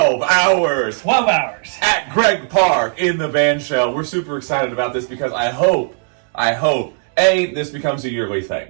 hours. 12 hours. At Greg Park in the Bandshell. We're super excited about this because I hope, this becomes a yearly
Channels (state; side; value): silent; left; 59 dB below the other